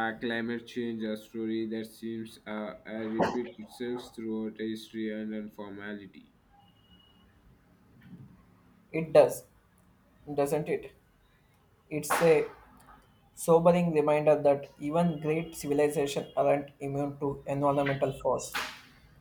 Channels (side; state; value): both; identical; correlation 1.00